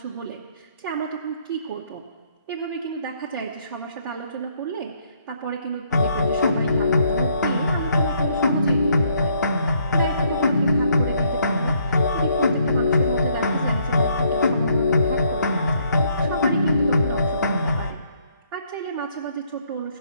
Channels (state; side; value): inverted; both; correlation -0.68